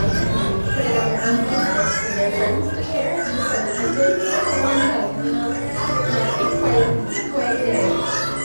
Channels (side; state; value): both; inverted; correlation -1.00